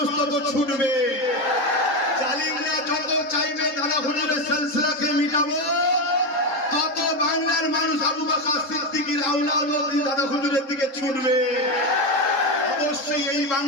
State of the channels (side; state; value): right; late; 3.8 ms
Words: তত ছুটবে। জালিমরা যত চাইবে দাদা হুজুরের সিলসিলাকে মিটাবো, তত বাংলার মানুষ আবু বকর সিদ্দিকীর আওলাদ দাদা হুজুরের দিকে ছুটবে। অবশ্যই এই